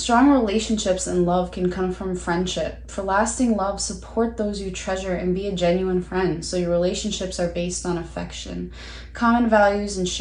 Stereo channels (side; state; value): both; identical; correlation 1.00